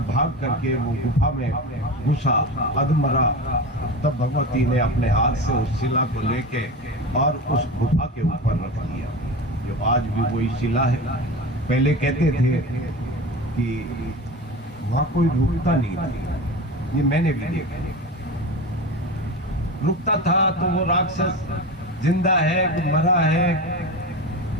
भाग करके वो गुफा में घुसा, अधमरा। तब भगवती ने अपने हाथ से उस शिला को लेके और उस गुफा के ऊपर रख दिया, जो आज भी वही शिला है। पहले कहते थे कि वहां कोई रुकता नहीं था, ये मैंने भी देखा। रुकता था तो वो राक्षस जिंदा है कि मरा है,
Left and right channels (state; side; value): normal; both; correlation 0.27